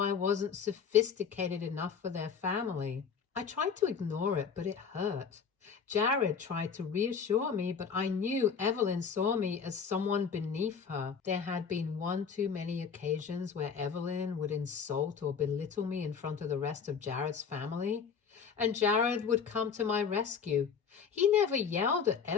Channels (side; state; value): right; quieter; 6.4 dB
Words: wasn't sophisticated enough for their family. I tried to ignore it, but it hurt. Jared tried to reassure me, but I knew Evelyn saw me as someone beneath her. There had been one too many occasions where Evelyn would insult or belittle me in front of the rest of Jared's family, and Jared would come to my rescue. He never yelled at